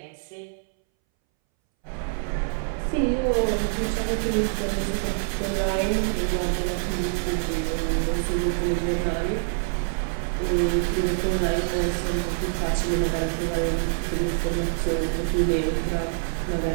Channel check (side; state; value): left; silent; 61 dB below the other